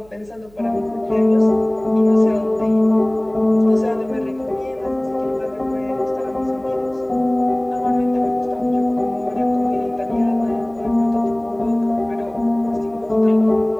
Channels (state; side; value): noise; right; hum, 27 dB below the sound